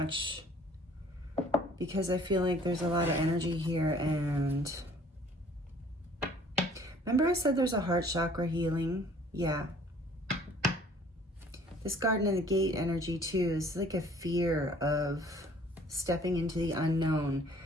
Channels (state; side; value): normal; both; correlation 0.54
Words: because I feel like there's a lot of energy here. And remember I said there's a heart chakra healing? Yeah. This Garden and the Gate energy too is like a fear of stepping into the unknown.